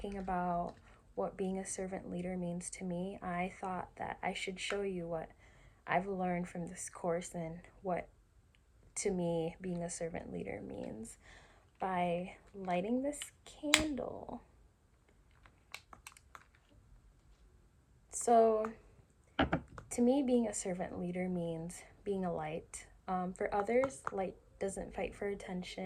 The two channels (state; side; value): identical; both; correlation 1.00